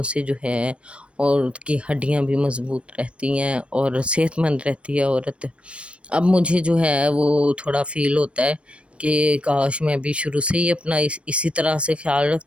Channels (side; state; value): left; late; 0.060 ms